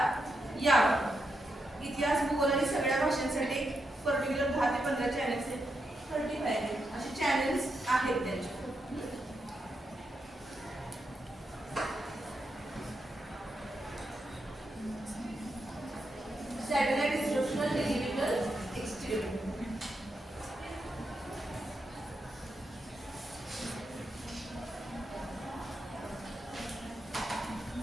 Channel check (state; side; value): normal; both; correlation 0.84